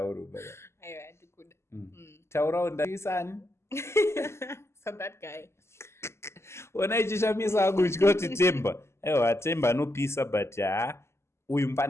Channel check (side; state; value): right; late; 0.13 ms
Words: baba. Aiwa ndikuda. Taurawo ndisani. So that guy. Ona ichishamisa akutya kuti Themba. Aiwa Themba anopisa but uyu